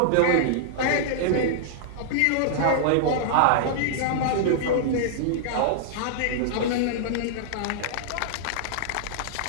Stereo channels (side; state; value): both; different; correlation -0.02